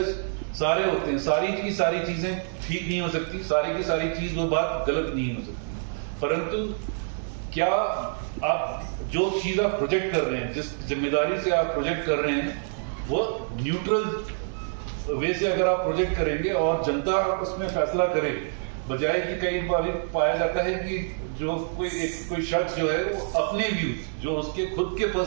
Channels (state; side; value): silent; left; digital silence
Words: सारे होते हैं, सारी की सारी चीजें ठीक नहीं हो सकती, सारी की सारी चीज वो बात गलत नहीं हो सकती, परंतु क्या आप जो चीज आप प्रोजेक्ट कर रहे हैं, जिस जिम्मेदारी से आप प्रोजेक्ट कर रहे हैं, वो न्यूट्रल वे से अगर आप प्रोजेक्ट करेंगे और जनता उसमें फैसला करे, बजाय कि कई बार पाया जाता है कि जो कोई शख्स जो है वो अपने व्यूज, जो उसके खुद के